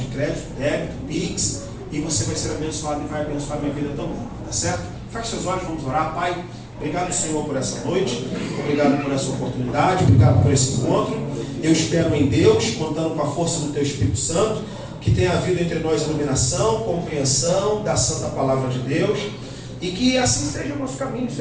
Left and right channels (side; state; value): both; identical; correlation 1.00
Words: crédito, débito, Pix, e você vai ser abençoado e vai abençoar a minha vida também. Tá certo? Feche seus olhos, vamos orar. Pai, obrigado, Senhor, por essa noite. Obrigado por essa oportunidade. Obrigado por esse encontro. Eu espero em Deus, contando com a força do Teu Espírito Santo, que tenha havido entre nós iluminação, compreensão da Santa Palavra de Deus, e que assim seja o nosso caminho,